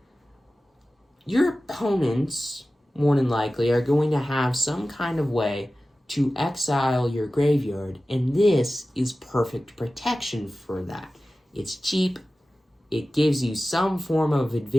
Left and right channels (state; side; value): normal; both; correlation 0.96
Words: your opponents, more than likely, are going to have some kind of way to exile your graveyard, and this is perfect protection for that. It's cheap, it gives you some form of